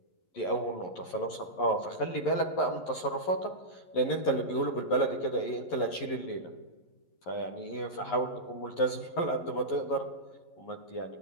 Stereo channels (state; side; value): late; right; 11 ms